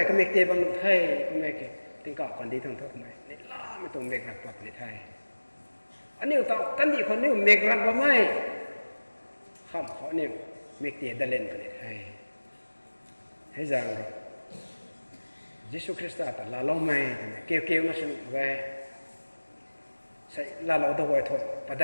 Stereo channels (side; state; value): both; inverted; correlation -1.00